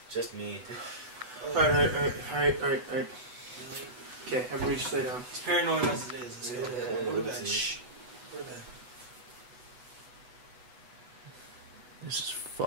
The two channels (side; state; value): left; late; 8.1 ms